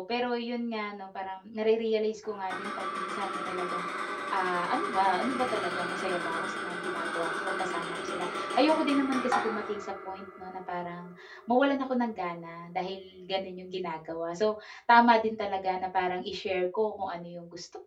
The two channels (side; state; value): both; identical; correlation 1.00